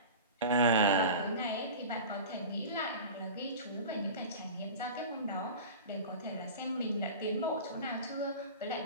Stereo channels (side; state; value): both; inverted; correlation -0.34